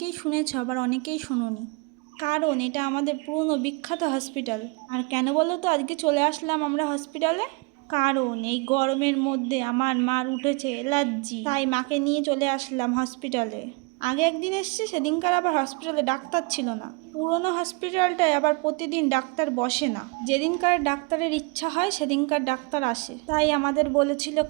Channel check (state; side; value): quieter; left; 29.4 dB